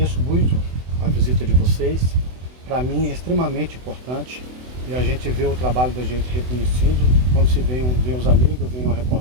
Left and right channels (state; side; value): late; left; 24 ms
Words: muito a visita de vocês. Para mim é extremamente importante e a gente vê o trabalho da gente reconhecido quando se vê os amigos, vem uma